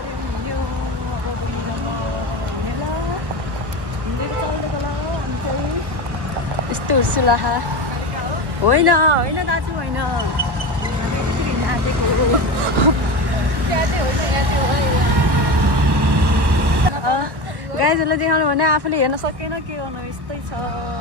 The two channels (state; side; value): late; left; 1.1 ms